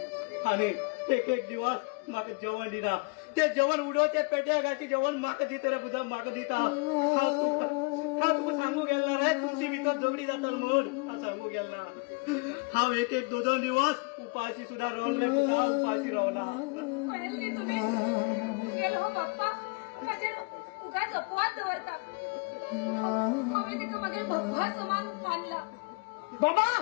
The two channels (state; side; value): quieter; right; 31.3 dB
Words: आनी एक एक दिवस म्हाका जेवण दिना ते जेवण उडोवचे पेट्या घालचे जेवण म्हाका दिता रे पुता म्हाका दिता हांव तुका सांगू गेलो ना रे तुमची भितर झगडी जाता म्हूण हांव सांगू गेलो ना हांव एक एक दोन दिवस उपाशी सुद्धा रावलो रे पुता उपाशी रावला कळले तुम्ही गेलो हो बाप्पा माझे उगाच अपवाद दवरता हांवें तेका मागीर भगवा समान मानला बाबा